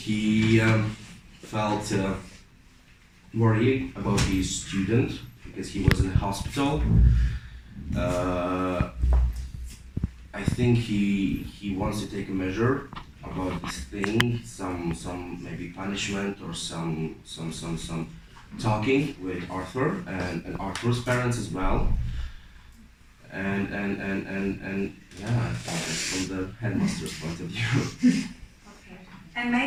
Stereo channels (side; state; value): both; identical; correlation 1.00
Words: felt worried about his student because he was in the hospital. I think he wants to take a measure about this thing, some maybe punishment or some talking with Arthur and Arthur's parents as well. And yeah, I think that's from the headmaster's point of view. Okay. And